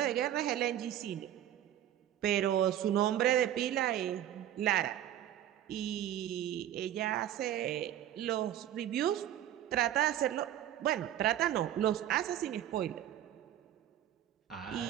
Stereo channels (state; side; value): quieter; left; 11.6 dB